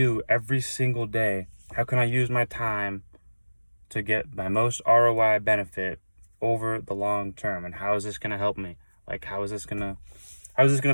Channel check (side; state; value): both; inverted; correlation -1.00